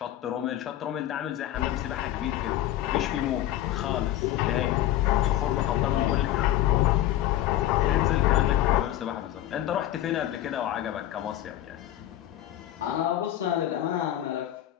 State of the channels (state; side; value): quieter; right; 13.2 dB